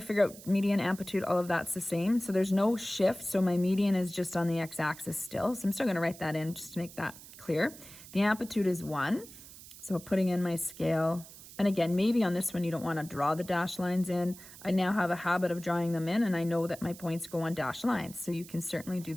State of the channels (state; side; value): noise; right; hiss, 17 dB below the sound